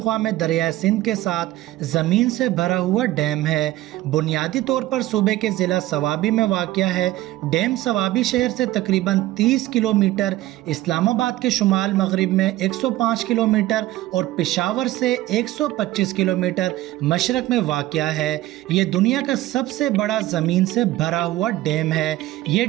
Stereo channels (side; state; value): left; quieter; 16.0 dB